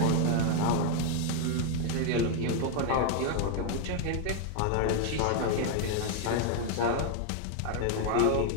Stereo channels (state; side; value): different; both; correlation 0.00